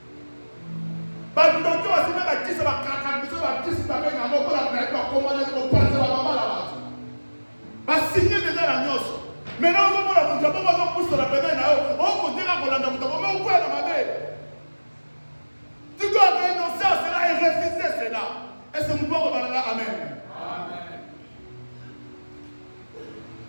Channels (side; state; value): both; inverted; correlation -1.00